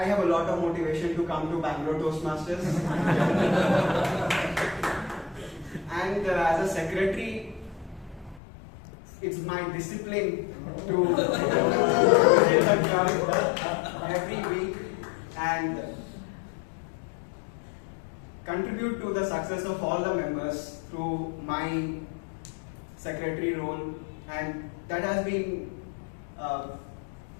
a lot of motivation to come to Bangalore Toastmasters. And as a secretary, it's my discipline to visit the club every week and contribute to the success of all the members through my secretary role, and that has been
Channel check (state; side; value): drops out; right; at 8.4 s